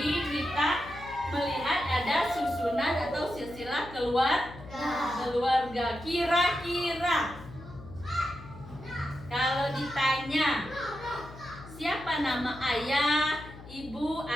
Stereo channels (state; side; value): noise; left; hum, 16 dB below the sound